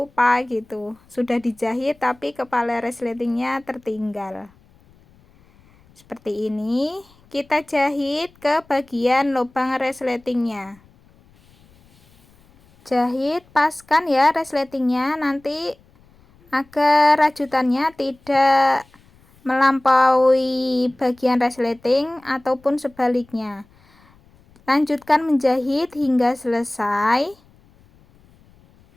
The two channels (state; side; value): noise; left; rumble, 30 dB below the sound